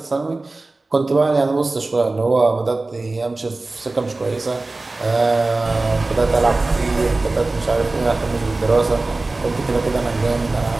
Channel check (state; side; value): quieter; left; 3.2 dB